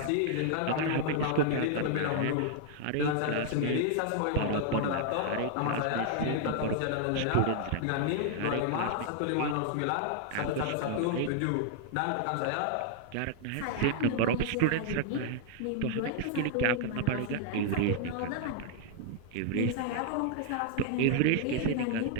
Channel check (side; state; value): both; different; correlation -0.01